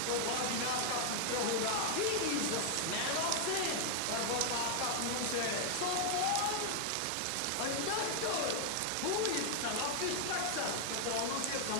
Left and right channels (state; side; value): different; both; correlation 0.00